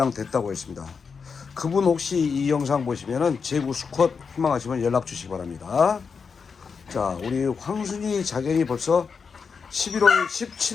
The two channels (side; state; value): right; quieter; 5.6 dB